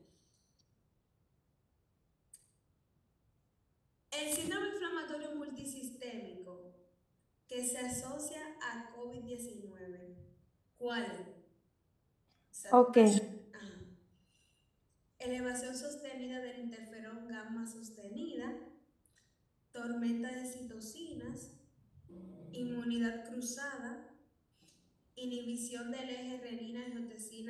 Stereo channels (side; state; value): both; identical; correlation 1.00